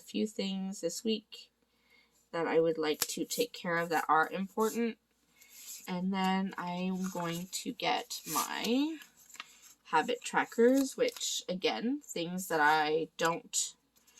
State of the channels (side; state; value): both; identical; correlation 1.00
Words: things this week that I would like to take care of that are important. And then I'm going to get my habit trackers, which again, things that I don't